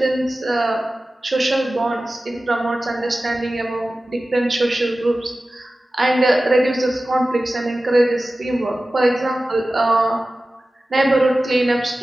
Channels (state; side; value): normal; both; correlation 0.96